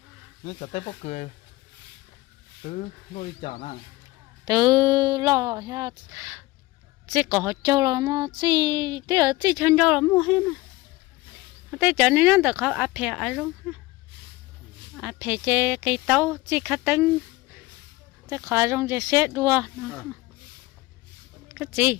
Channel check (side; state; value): right; quieter; 20.0 dB